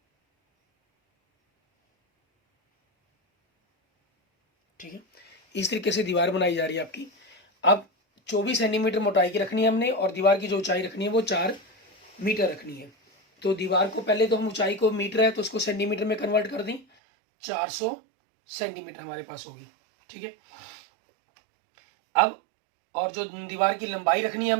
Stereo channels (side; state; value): left; drops out; at 16.9 s